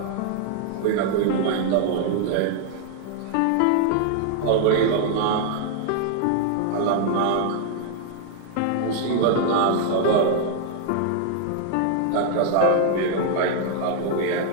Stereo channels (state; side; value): different; both; correlation -0.01